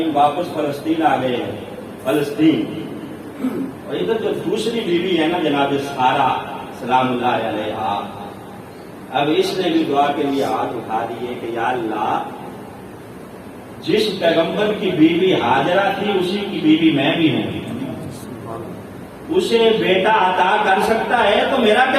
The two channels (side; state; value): both; identical; correlation 1.00